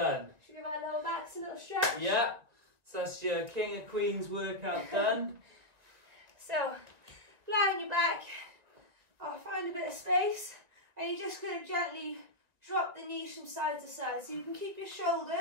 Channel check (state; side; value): late; left; 1.9 ms